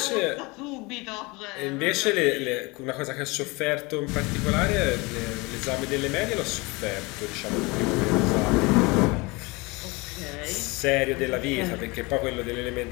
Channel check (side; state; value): right; quieter; 25.4 dB